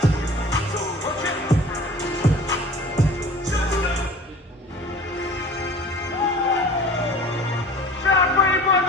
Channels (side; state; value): both; normal; correlation 0.43